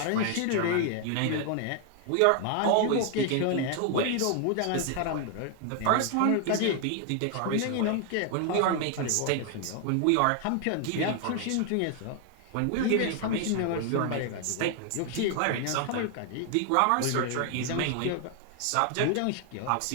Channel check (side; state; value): both; different; correlation 0.00